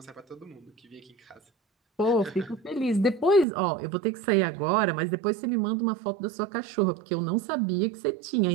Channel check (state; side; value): drops out; left; at 3.5 s